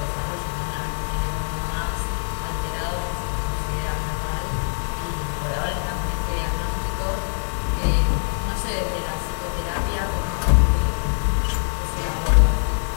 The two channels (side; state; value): right; silent; 62 dB below the other